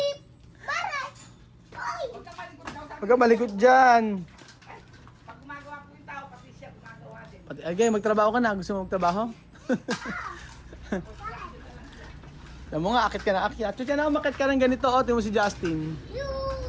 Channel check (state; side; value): identical; both; correlation 1.00